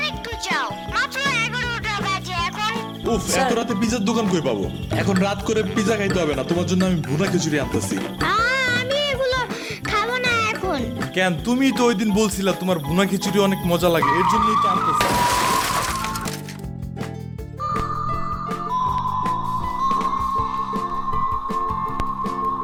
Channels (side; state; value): both; identical; correlation 1.00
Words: যাও, মাত্র 11টা বাজে এখন। উফ, এত রাতে পিজার দোকান কই পাবো? এখন রাত করে পিজা খাইতে হবে না, তোমার জন্য আমি ভুনা খিচুড়ি আনতেছি। আমি এগুলো খাবো না এখন। কেন? তুমি তো ওই দিন বলছিলা তোমার ভুনা খিচুড়ি অনেক মজা লাগে, এর জন্যই তো আনতেছি।